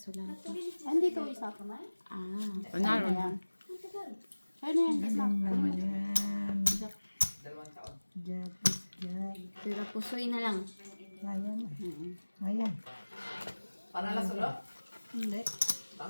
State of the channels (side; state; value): both; inverted; correlation -1.00